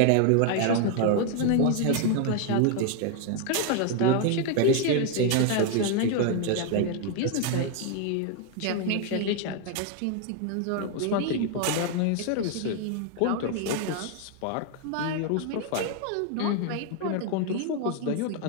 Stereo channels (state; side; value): different; both; correlation 0.00